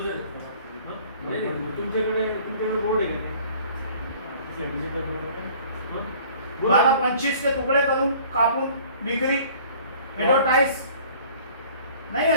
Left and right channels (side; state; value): both; inverted; correlation -0.52